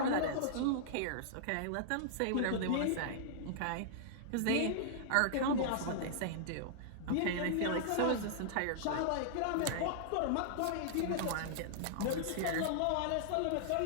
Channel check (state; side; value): different; both; correlation -0.02